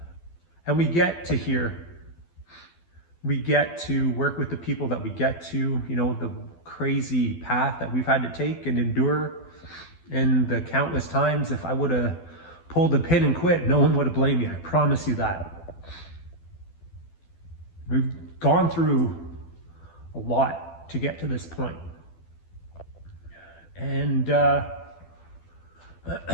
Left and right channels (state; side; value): late; right; 12 ms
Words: And we get to here. We get to work with the people that we get to, you know, the crazy path that we've had to take and endure, and the countless times if I would have pulled the pin and quit, no one would have blamed me. I promise you that. We've gone through a lot to get to this point. And